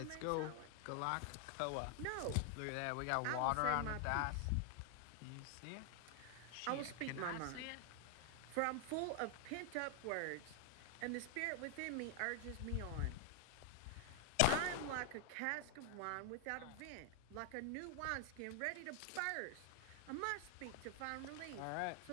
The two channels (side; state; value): both; different; correlation 0.00